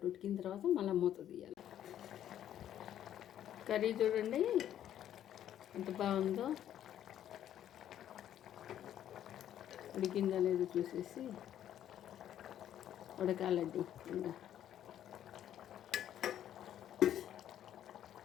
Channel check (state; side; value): quieter; right; 10.9 dB